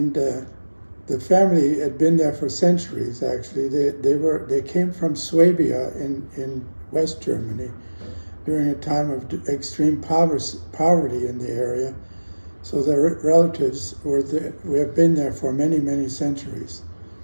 the family had been there for centuries. Actually, they came from Swabia in West Germany during a time of extreme poverty in the area. So their relatives have been there for many centuries.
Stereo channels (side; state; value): both; inverted; correlation -1.00